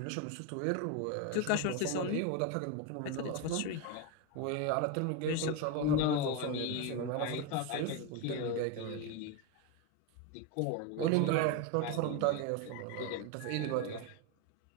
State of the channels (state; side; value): different; both; correlation 0.03